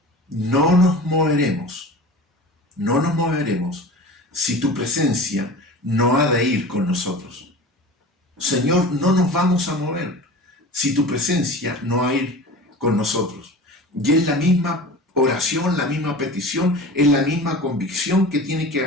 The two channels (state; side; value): normal; both; correlation 0.36